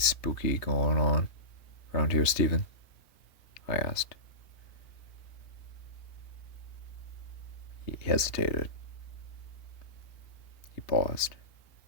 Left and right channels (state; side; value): late; right; 3.2 ms